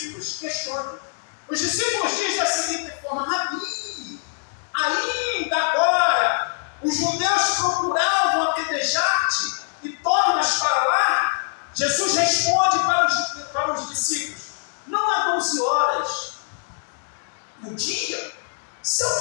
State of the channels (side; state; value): right; silent; digital silence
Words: questionam. Os discípulos dizem da seguinte forma: Rabi, ainda agora os judeus procuravam apedrejar-te e tornas para lá? Jesus responde para os discípulos: não há 12 horas no dia? Se